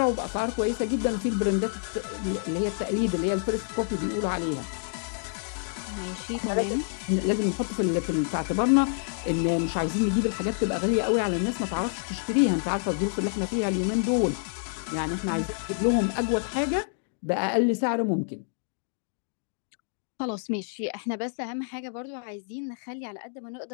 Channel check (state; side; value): silent; right; digital silence